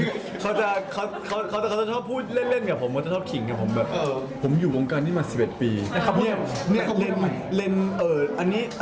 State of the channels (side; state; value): both; identical; correlation 1.00